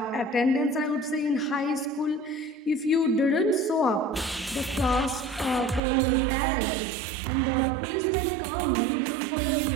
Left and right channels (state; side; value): drops out; left; at 5.8 s